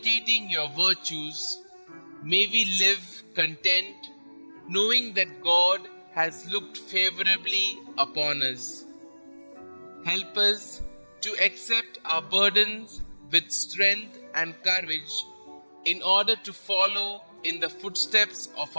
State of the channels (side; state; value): both; inverted; correlation -1.00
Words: your virtues, may we live content, knowing that God has looked favorably upon us. Help us to accept our burdens with strength and courage, in order to follow in the footsteps of